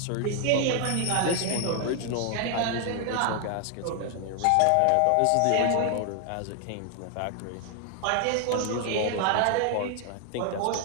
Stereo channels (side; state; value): both; different; correlation 0.00